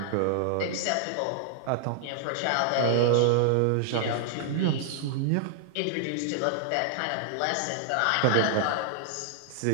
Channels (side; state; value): both; different; correlation -0.01